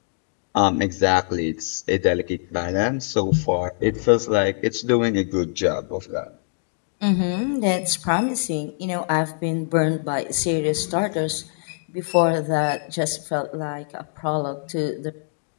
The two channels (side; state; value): right; silent; digital silence